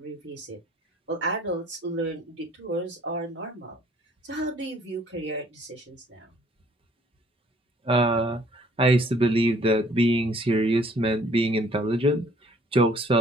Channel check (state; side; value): normal; both; correlation 0.58